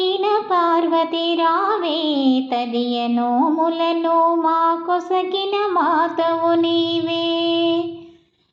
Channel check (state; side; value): identical; both; correlation 1.00